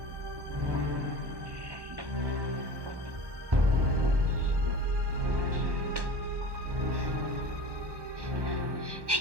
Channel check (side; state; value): left; late; 1.1 ms